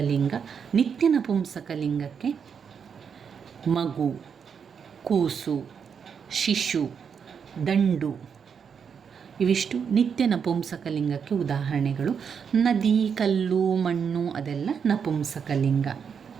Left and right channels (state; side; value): quieter; left; 6.8 dB